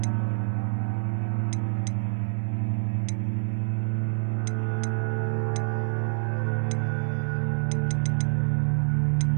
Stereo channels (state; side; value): silent; left; 60 dB below the other